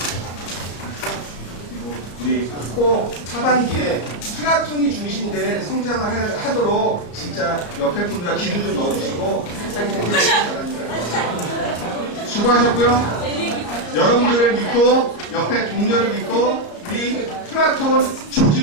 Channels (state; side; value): late; right; 34 ms